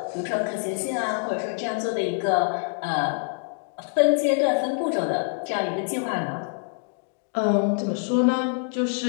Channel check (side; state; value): right; silent; 61 dB below the other